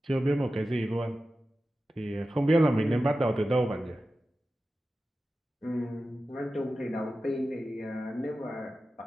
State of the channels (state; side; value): normal; both; correlation 0.93